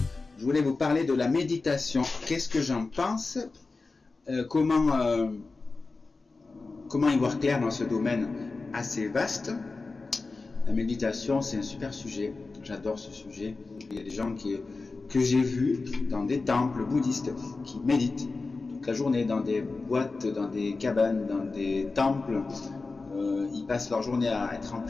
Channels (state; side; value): quieter; right; 3.8 dB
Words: Je voulais vous parler de la méditation. Qu'est-ce que j'en pense? Comment y voir clair dans ce domaine assez vaste? La méditation, c'est un super sujet. J'adore ce sujet. Il y a des gens que j'ai vus dans des temples bouddhistes qui méditent toute la journée dans des boîtes, dans des cabanes, dans des temples. Ils passent leur journée à être en